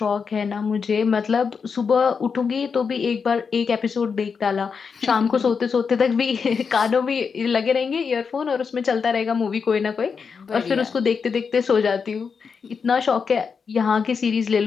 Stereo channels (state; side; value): quieter; right; 5.8 dB